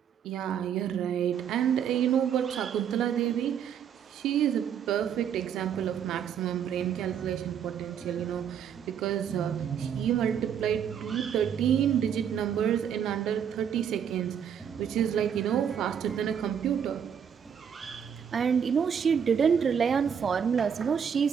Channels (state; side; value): quieter; left; 8.1 dB